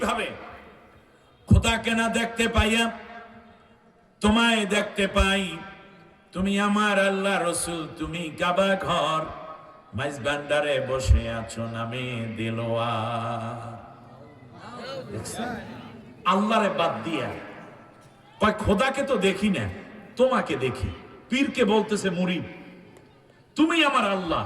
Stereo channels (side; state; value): both; identical; correlation 1.00